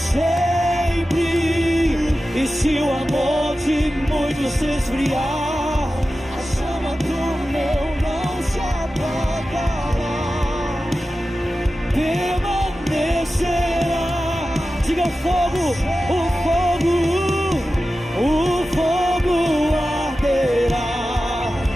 E se o amor de muitos se esfriar, a chama do meu não se apagará. Permanecerá. Diga: o fogo arderá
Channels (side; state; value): both; normal; correlation 0.94